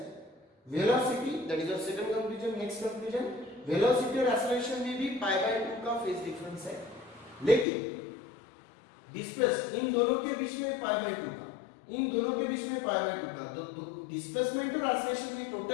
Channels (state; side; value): drops out; right; at 7.7 s